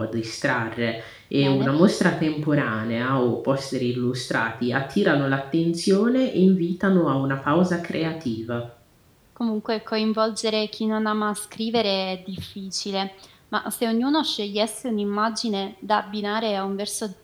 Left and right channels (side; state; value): both; identical; correlation 1.00